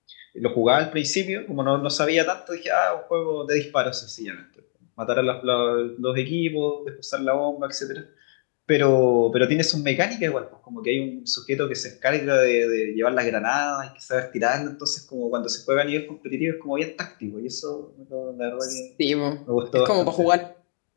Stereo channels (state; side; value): silent; right; digital silence